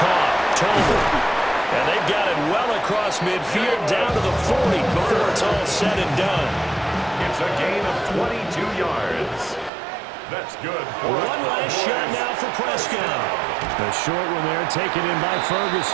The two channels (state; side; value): drops out; left; at 9.7 s